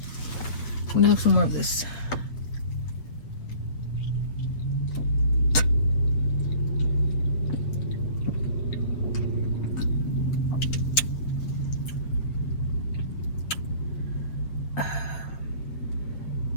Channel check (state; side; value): late; right; 7.8 ms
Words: I'm gonna have some more of this.